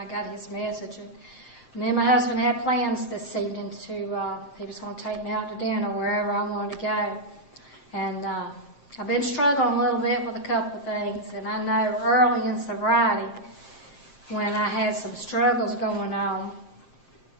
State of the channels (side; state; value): right; late; 7.6 ms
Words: got his message. And me and my husband had plans this evening he was going to take me out to dinner wherever I wanted to go. And I've been struggling a little bit with a couple of things, and I know early in sobriety, when I had some struggles going on,